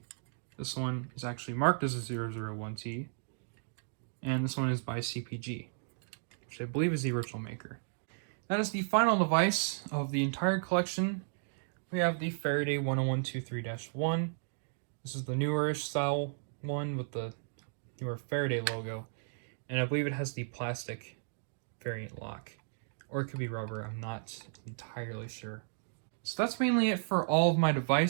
This one is actually marked as a 001T. And this one is by CPG, which I believe is the original maker. That is the final device of the entire collection. We have the Faraday 10123-1. This is the newer-ish style one with the newer Faraday logo. And I believe it has the plastic variant lock. Or it could be rubber, I'm not entirely sure. So that's mainly it for all of my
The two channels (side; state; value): left; silent; digital silence